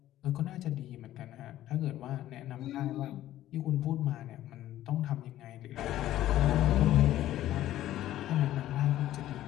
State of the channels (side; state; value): right; quieter; 13.5 dB